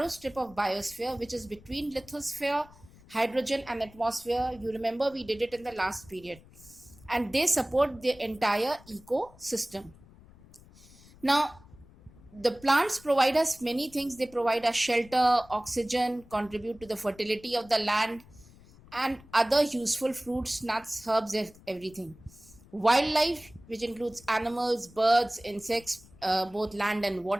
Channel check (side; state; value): left; noise; rumble, 23 dB below the sound